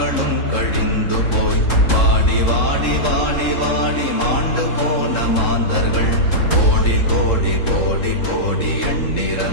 கழிந்து போய் வாடி வாடி வாடி வாடி மாண்டு போன மாந்தர்கள் கோடி கோடி கோடி கோடி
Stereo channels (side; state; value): right; late; 3.7 ms